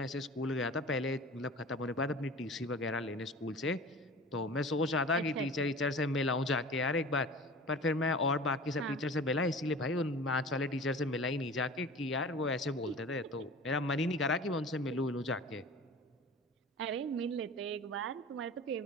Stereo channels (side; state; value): both; normal; correlation 0.39